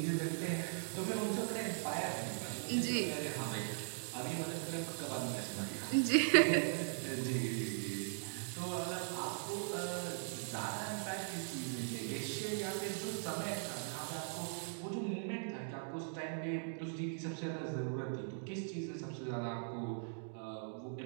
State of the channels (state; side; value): silent; left; digital silence